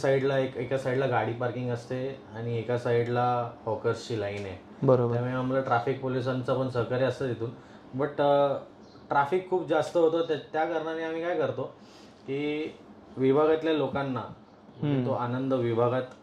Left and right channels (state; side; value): identical; both; correlation 1.00